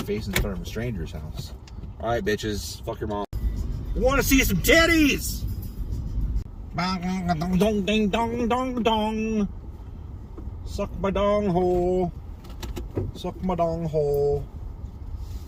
in front of a stranger's house. Alright, bitches, fuck your mom. Wanna see some titties? Dong ding dong dong dong. Suck my dong hole. Suck my dong hole.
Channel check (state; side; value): identical; both; correlation 1.00